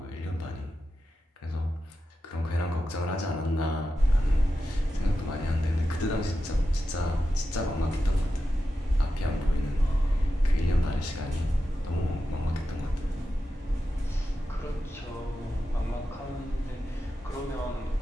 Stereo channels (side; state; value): both; normal; correlation 0.90